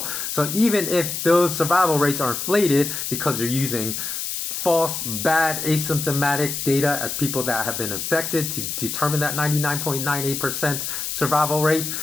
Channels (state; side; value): noise; left; hiss, 4 dB below the sound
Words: So even if those survival rates are inflated because you're using false, bad, asymptomatic data as people that have been infected to determine that 99.98% survival rate,